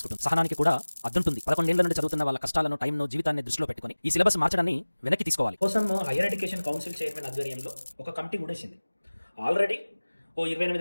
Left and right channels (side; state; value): both; inverted; correlation -1.00